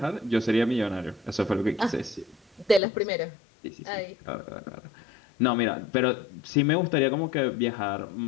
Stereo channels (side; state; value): right; drops out; at 2.8 s